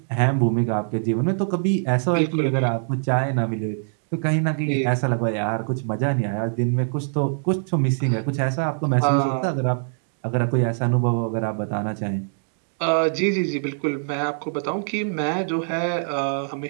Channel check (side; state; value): left; silent; digital silence